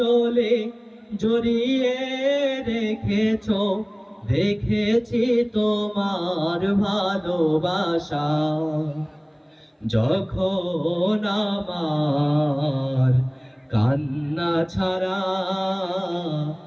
জড়িয়ে রেখেছো, দেখেছি তোমার ভালোবাসা। যখন আমার কান্না ছাড়া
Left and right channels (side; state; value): both; identical; correlation 1.00